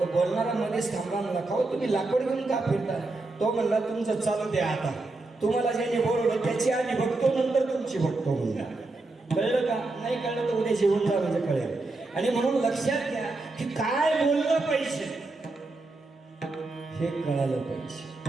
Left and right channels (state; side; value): quieter; left; 3.2 dB